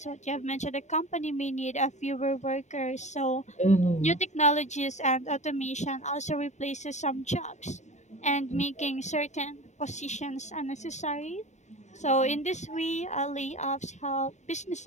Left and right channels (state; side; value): late; right; 0.34 ms